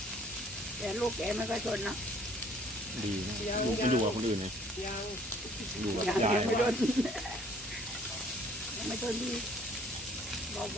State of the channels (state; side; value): normal; both; correlation 0.58